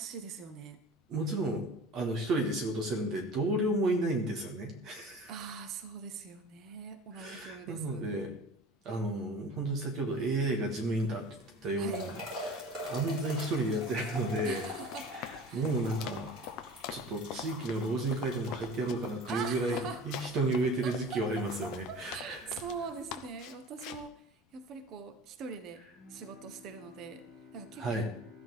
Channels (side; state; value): both; normal; correlation 0.40